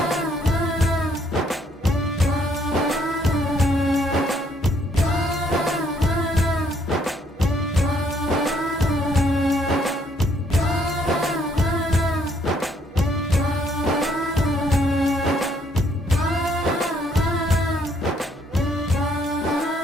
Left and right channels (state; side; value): normal; both; correlation 0.68